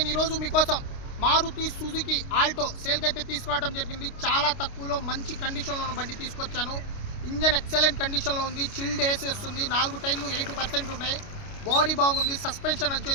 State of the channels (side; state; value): right; late; 29 ms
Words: ఈరోజు మీకోసం మారుతి సుజుకి ఆల్టో సేల్కి అయితే తీసుకురావడం జరిగింది. చాలా తక్కువలో మంచి కండిషన్లో ఉన్న బండి తీసుకొచ్చాను. ఇంజన్ ఎక్సలెంట్ కండిషన్లో ఉంది. చిల్డ్ ఏసీ వస్తుంది. 4 టైర్లు 80% ఉన్నాయి. బాడీ బాగుంది. సస్పెన్షన్